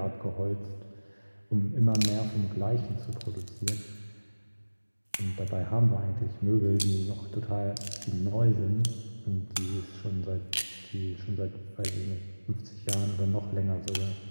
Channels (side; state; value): both; inverted; correlation -1.00